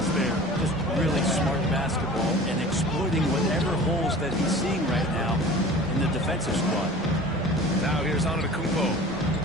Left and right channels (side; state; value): both; normal; correlation 0.41